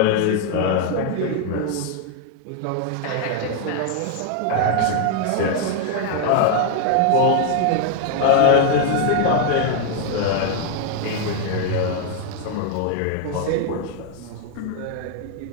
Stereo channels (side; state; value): both; different; correlation 0.00